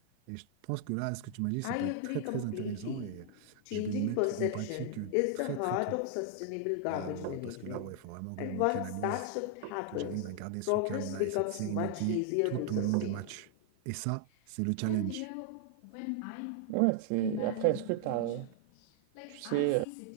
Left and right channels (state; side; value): different; both; correlation 0.00